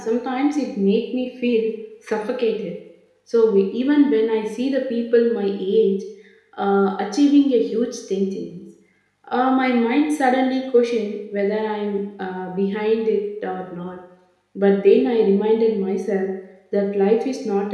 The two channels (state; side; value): identical; both; correlation 1.00